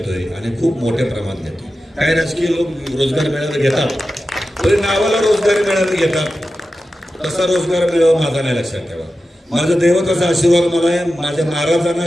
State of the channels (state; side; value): normal; both; correlation 0.92